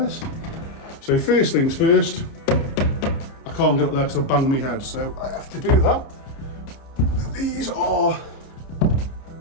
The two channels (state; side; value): late; right; 30 ms